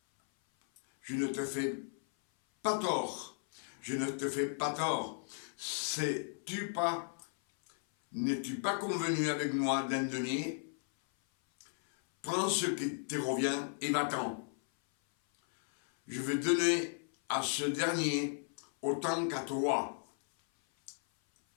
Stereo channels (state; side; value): silent; right; 54 dB below the other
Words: pas tort. N'es-tu pas convenu avec moi d'un denier? Prends ce qui te revient et va-t'en. Je vais donner à ce dernier autant qu'à toi.